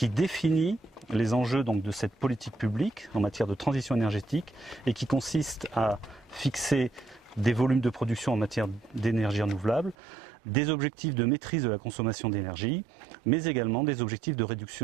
définit les enjeux donc, de cette politique publique en matière de transition énergétique et qui consiste à fixer des volumes de production en matière d'énergie renouvelable, des objectifs de maîtrise de la consommation d'énergie, mais également des objectifs de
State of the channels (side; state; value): left; drops out; at 10.0 s